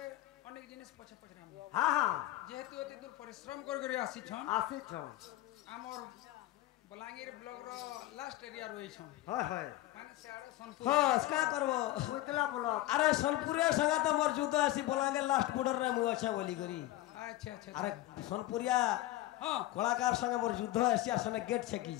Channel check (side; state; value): right; quieter; 15.9 dB